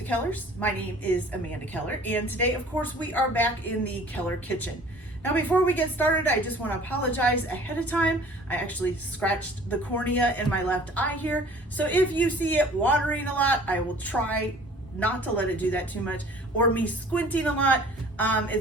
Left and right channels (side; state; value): both; normal; correlation 0.49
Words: Kellers. My name is Amanda Keller and today of course we are back in the Keller kitchen. Now before we get started I just want to apologize ahead of time. I actually scratched the cornea in my left eye here, so if you see it watering a lot I will try not to let it do that too much, or me squinting a lot.